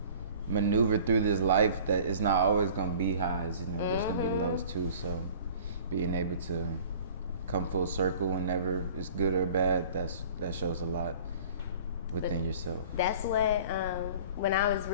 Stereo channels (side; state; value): both; inverted; correlation -0.46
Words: maneuver through this life that it's not always gonna be highs. There's gonna be lows too. So being able to come full circle whenever it's good or bad, that shows a lot within yourself. That's what when I was